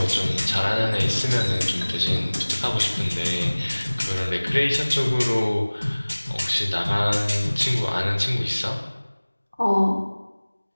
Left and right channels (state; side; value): inverted; both; correlation -1.00